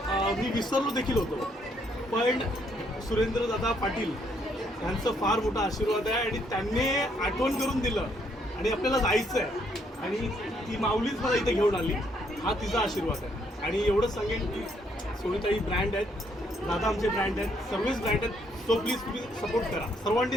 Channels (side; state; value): both; normal; correlation 0.71